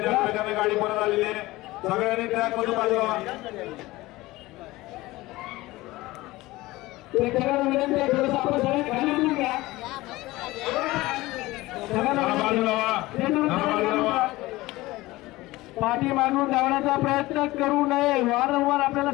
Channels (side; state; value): right; quieter; 19.2 dB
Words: त्या वेगाने गाडी परत आलेली आहे. सगळ्यांनी ट्रॅक मधून बाजूला. प्रेक्षकांना विनंती आहे थोडंसं आपण सगळे खाली उतरून घ्या. पाठी मागून धावण्याचा प्रयत्न करू नये. वारंवार आपल्याला